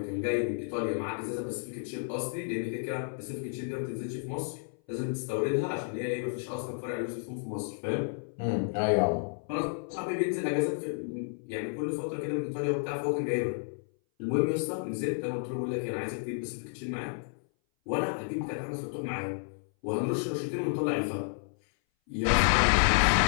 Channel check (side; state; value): right; silent; 57 dB below the other